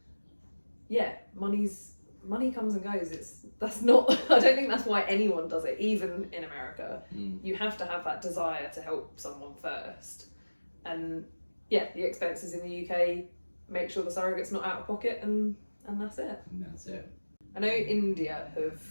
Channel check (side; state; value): both; inverted; correlation -1.00